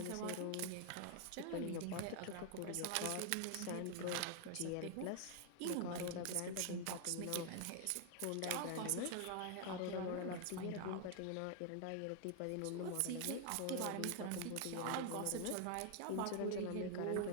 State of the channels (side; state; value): both; different; correlation 0.00